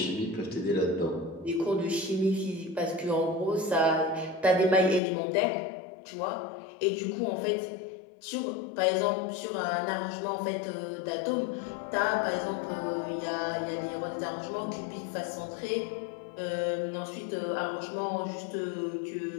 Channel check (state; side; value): drops out; right; at 5.0 s